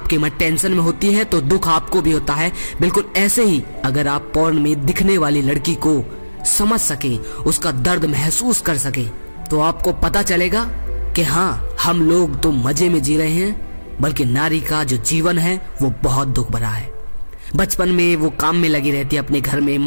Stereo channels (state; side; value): inverted; both; correlation -1.00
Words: मन टेंशन में होती है तो दुख आपको भी होता है, बिल्कुल ऐसे ही अगर आप पोर्न में दिखने वाली लड़की को समझ सके, उसका दर्द महसूस कर सके, तो आपको पता चलेगा कि हाँ, हम लोग तो मजे में जी रहे हैं, बल्कि नारी का जो जीवन है वो बहुत दुख भरा है। बचपन में वो काम में लगी रहती है, अपने घर में